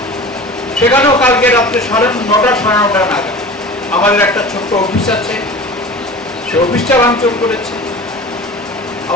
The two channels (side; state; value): both; normal; correlation 0.37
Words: সেখানেও কালকে রাত্রে 9:30 সাড়ে 9টা নাগাদ আমাদের একটা ছোট্ট অফিস আছে, সে অফিসটা ভাঙচুর করেছে।